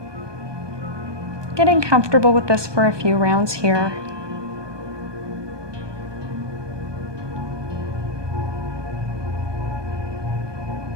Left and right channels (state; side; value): late; left; 1.2 ms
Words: Getting comfortable with this for a few rounds here.